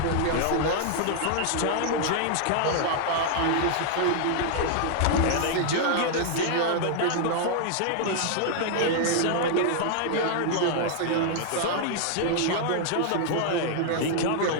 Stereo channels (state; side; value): different; both; correlation 0.00